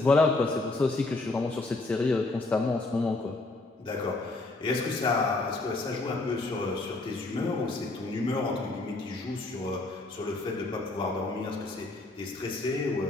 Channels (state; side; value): quieter; right; 3.1 dB